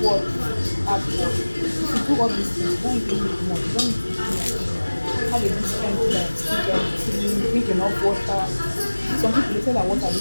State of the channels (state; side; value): inverted; both; correlation -1.00